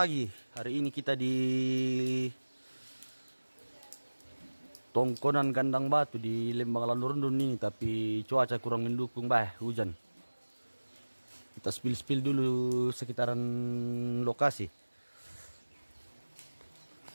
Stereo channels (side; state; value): both; inverted; correlation -1.00